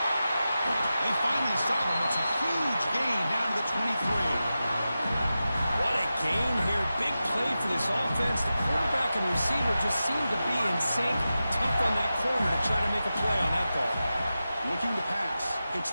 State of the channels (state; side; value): inverted; both; correlation -0.93